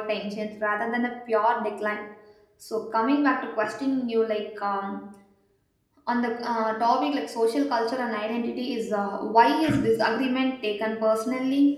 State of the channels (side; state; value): both; identical; correlation 1.00